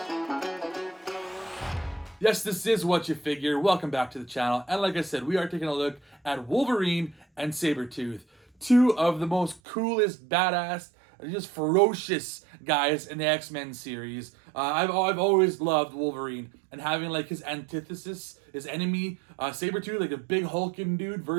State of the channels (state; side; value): drops out; left; at 9.6 s